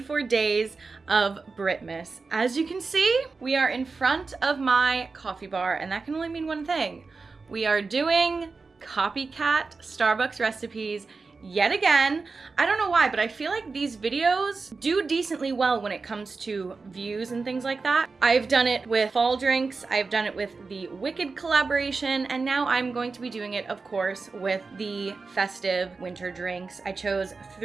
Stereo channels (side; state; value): left; quieter; 4.3 dB